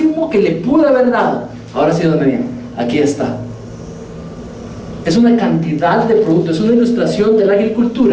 que le pude haber dado. Ahora sí, don Daniel, aquí está. Es una cantidad de productos, es una ilustración de la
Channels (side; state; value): both; identical; correlation 1.00